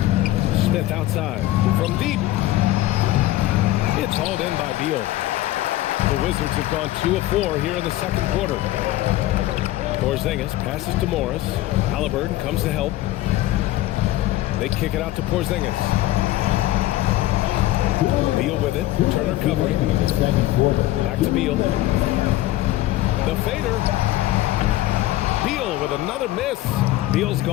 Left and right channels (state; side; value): quieter; right; 15.8 dB